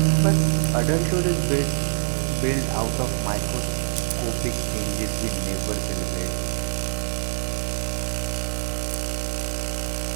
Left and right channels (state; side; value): silent; left; digital silence